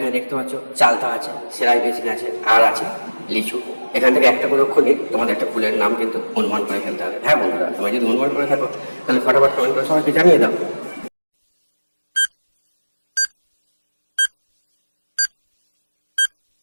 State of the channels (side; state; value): both; inverted; correlation -1.00